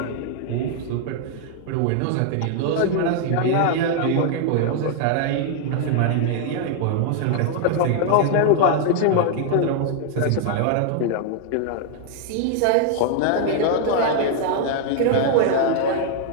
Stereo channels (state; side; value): different; both; correlation 0.00